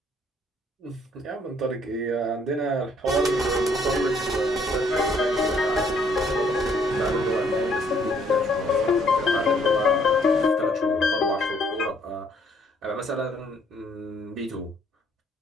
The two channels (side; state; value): both; normal; correlation 0.65